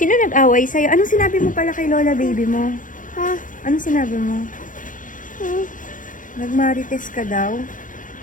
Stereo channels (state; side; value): late; right; 0.38 ms